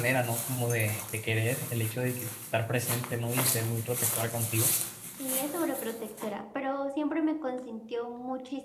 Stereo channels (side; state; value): both; identical; correlation 1.00